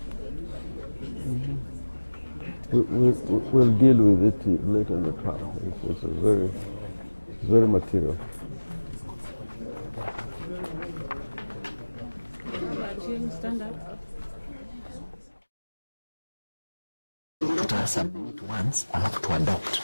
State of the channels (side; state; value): both; inverted; correlation -1.00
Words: We'll deal with it later in the trial. It's very material. Stand up. To submit once, I have to adopt